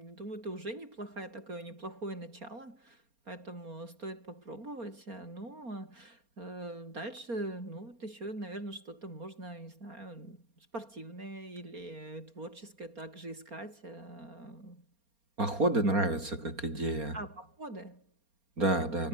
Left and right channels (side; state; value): left; late; 4.3 ms